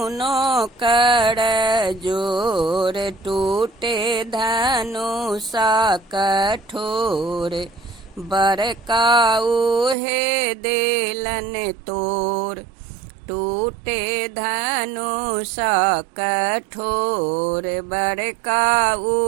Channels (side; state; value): left; drops out; at 10.0 s